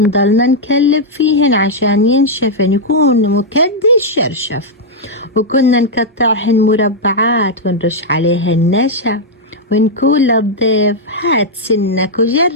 نكلب فيهن عشان ينشفن يكون مكدي الشرشف. وكنا نقطعهن مربعات ونرش عليهن نشا ونقول للضيف هات سنك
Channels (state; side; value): normal; both; correlation -0.04